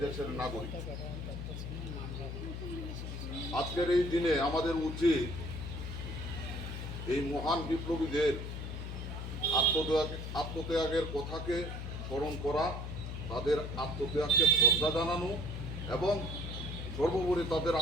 দেশের নাগরিক। আজকের এই দিনে আমাদের উচিত এই মহান বিপ্লবীদের আত্মত্যাগের কথাকে স্মরণ করা, তাদের আত্মত্যাগকে শ্রদ্ধা জানানো এবং সর্বোপরি তাদের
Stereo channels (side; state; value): left; noise; hum, 6 dB below the sound